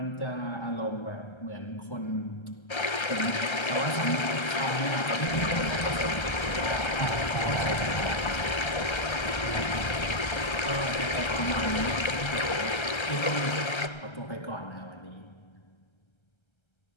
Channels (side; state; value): right; late; 1.3 ms